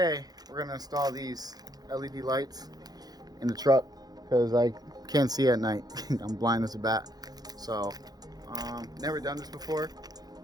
we're gonna install these LED lights in the truck because I can't see at night. I'm blind as a bat. So never done this before.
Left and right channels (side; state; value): left; late; 0.19 ms